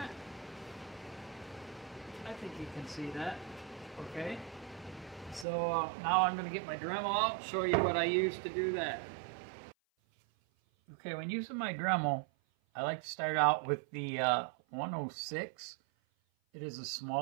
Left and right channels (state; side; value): drops out; left; at 5.5 s